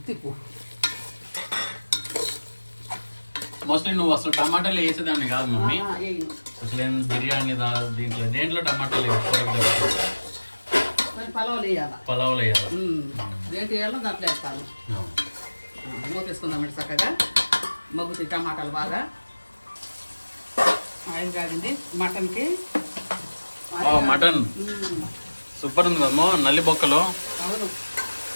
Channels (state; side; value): inverted; both; correlation -1.00